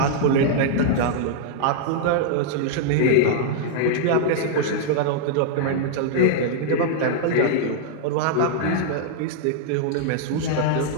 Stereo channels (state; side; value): different; both; correlation -0.01